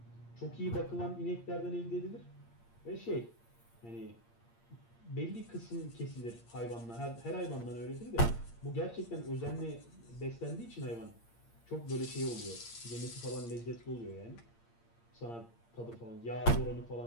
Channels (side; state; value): right; late; 8.7 ms